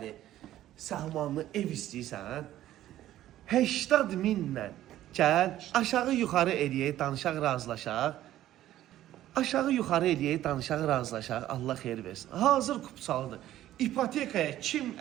səhmanlı ev istəyirsən, 80 minlə gəl, aşağı yuxarı eləyək, danışaq, razılaşaq. Aşağı yuxarı eləyək, danışaq, razılaşaq, Allah xeyir versin. Hazır kupçalıdır. İpotekaya kim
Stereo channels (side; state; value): left; quieter; 13.4 dB